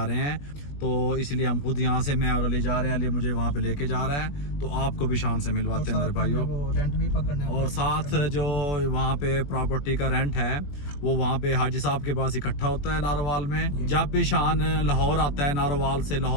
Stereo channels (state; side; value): late; right; 21 ms